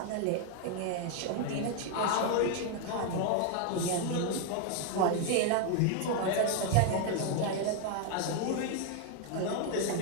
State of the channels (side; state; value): both; different; correlation 0.01